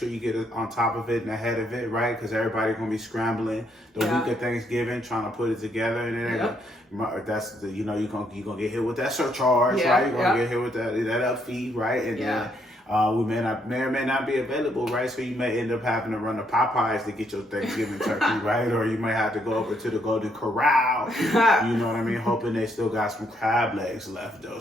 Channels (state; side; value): normal; both; correlation 0.73